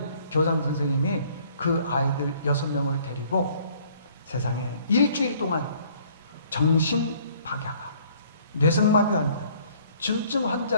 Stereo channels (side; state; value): both; inverted; correlation -0.59